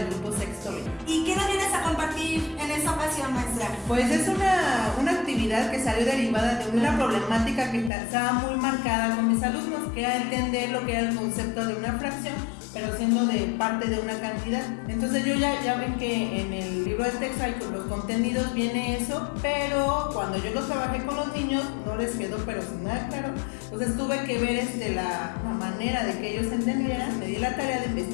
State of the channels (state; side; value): drops out; right; at 7.9 s